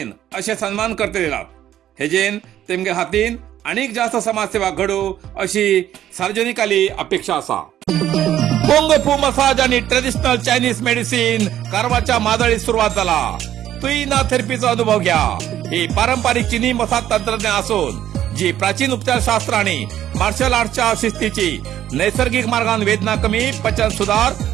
असे सन्मान करते येतात. हेजेन तेमगे हातीन अनेक जास्त समाजसेवा घडू अशी सार्वजनिकाली अपेक्षा आसा. कुंग फू मसाज आणि ट्रेडिशनल चायनीज मेडिसिन कारवारच्या मादळीत सुरुवात झाला. तुईना थेरपीचा अनुभव घ्या. ही पारंपरिक चीनी मसाज तंत्रज्ञान असून जी प्राचीन उपचारशास्त्र आणि मार्शल आर्टच्या शिस्तीची नैसर्गिक मार्गान वेदना कमी, पचन सुधार,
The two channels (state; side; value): quieter; left; 11.8 dB